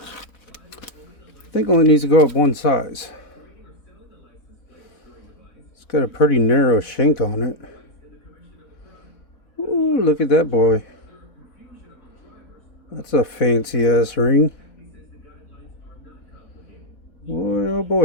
I think only needs to go up one size. It's got a pretty narrow shank on it. Ooh, look at that boy. That's a fancy ass ring. Boy, oh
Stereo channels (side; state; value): right; late; 4.0 ms